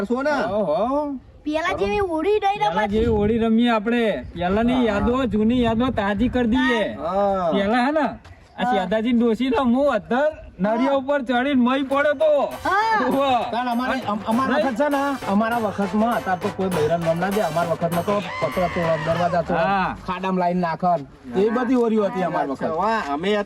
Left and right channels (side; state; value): both; identical; correlation 1.00